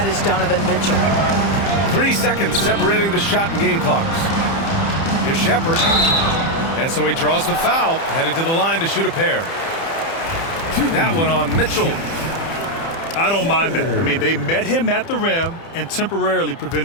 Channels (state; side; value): late; right; 30 ms